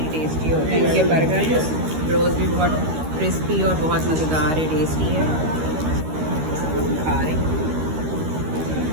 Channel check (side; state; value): left; late; 13 ms